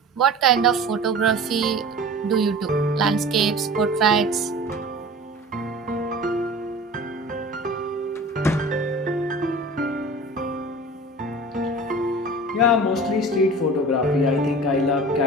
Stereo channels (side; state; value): both; normal; correlation 0.38